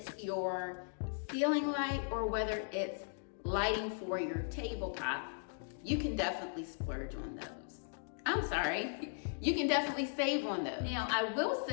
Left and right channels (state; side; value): silent; right; digital silence